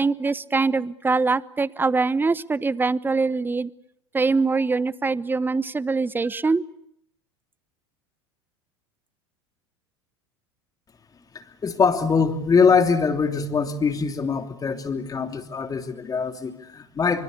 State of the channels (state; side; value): normal; both; correlation 0.73